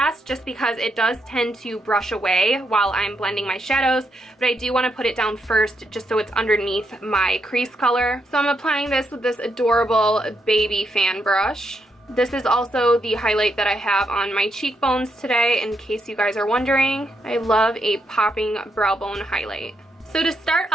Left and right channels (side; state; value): both; normal; correlation 0.80